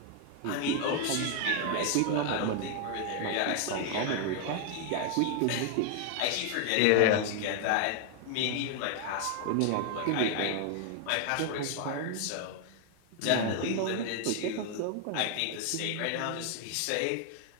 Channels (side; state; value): both; different; correlation 0.00